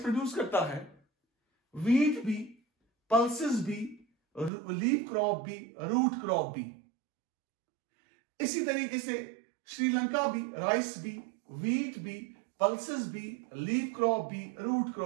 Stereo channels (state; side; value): drops out; left; at 4.5 s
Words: प्रोड्यूस करता है, व्हीट भी, पल्सेस भी, लीफ क्रॉप भी, रूट क्रॉप भी। इसी तरीके से श्रीलंका भी राइस भी, व्हीट भी, पल्सेस भी, लीफ क्रॉप भी, रूट